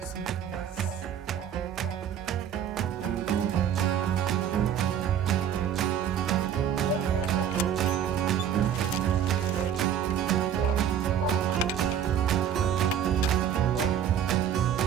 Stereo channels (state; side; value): quieter; left; 9.1 dB